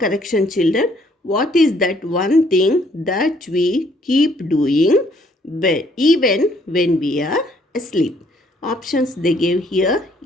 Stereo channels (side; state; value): both; normal; correlation 0.65